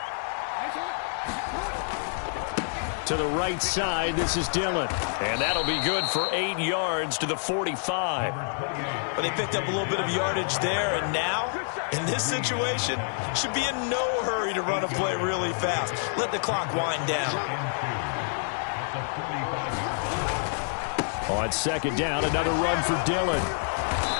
To the right side, this is Dillon. And that'll be good for 8 yards to the 45. But they picked up a little bit of yardage there, and now, in this situation, should be in no hurry to run a play really fast. Let the clock wind down. On second down, another run for Dillon.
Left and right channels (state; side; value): silent; right; 60 dB below the other